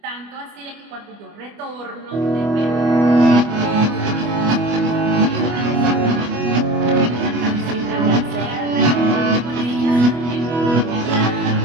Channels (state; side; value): late; left; 25 ms